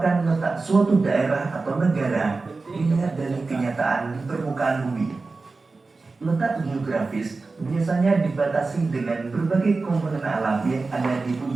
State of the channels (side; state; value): left; quieter; 3.8 dB